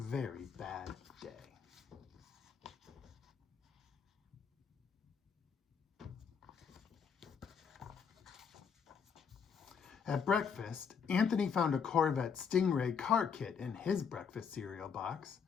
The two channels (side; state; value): right; quieter; 6.5 dB